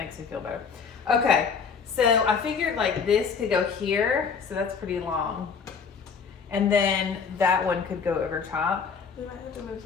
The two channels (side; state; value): right; quieter; 5.9 dB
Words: me feel better. Okay. So I figured like this could go here, so that's pretty long. And then that one could go over top. We might have to move